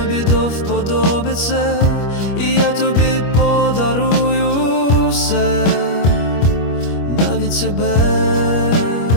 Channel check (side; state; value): right; late; 25 ms